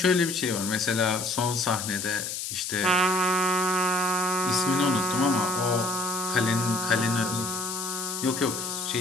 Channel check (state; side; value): noise; left; hiss, 5 dB below the sound